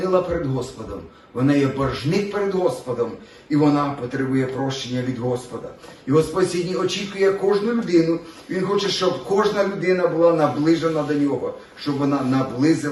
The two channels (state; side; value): identical; both; correlation 1.00